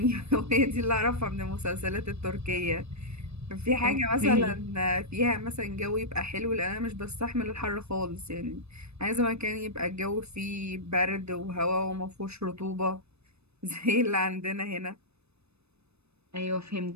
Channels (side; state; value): left; late; 0.80 ms